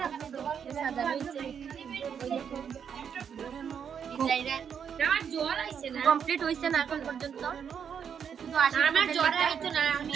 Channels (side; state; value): left; quieter; 7.5 dB